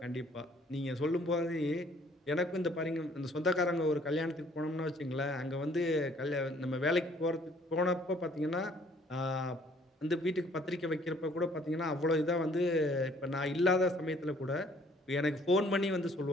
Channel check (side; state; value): both; normal; correlation 0.60